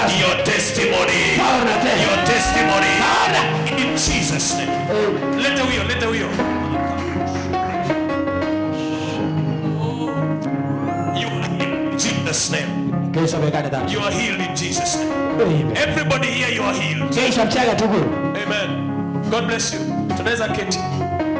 your testimony. Your testimony. In Jesus' name. Leta huyo, leta huyo. You are in Jesus' name. You are healed in Jesus' name. Amen. Everybody here, you are healed. Amen. God bless you. Tunaweza keti.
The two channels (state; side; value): identical; both; correlation 1.00